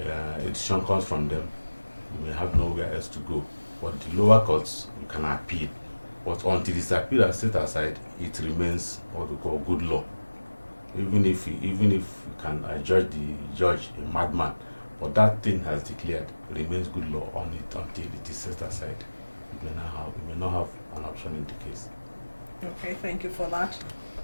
decision comes from them, you may have nowhere else to go. But the lower courts, you can appeal. But until it's appealed and set aside, it remains what we call good law. Even if you can judge the judge a madman, but that thing has declared, remains good law on it until it is set aside. You may not have an option in the case. Okay, thank you for that.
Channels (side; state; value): both; inverted; correlation -1.00